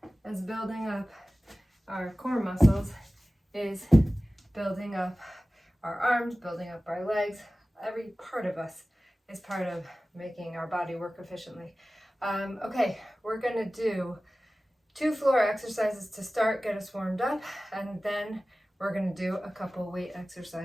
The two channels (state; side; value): normal; both; correlation 0.97